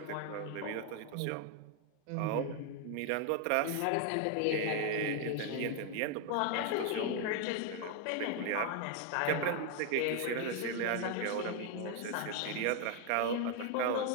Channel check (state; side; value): different; both; correlation 0.01